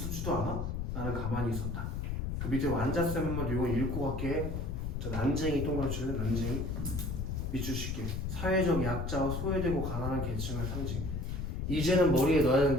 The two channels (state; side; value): noise; left; rumble, 3 dB below the sound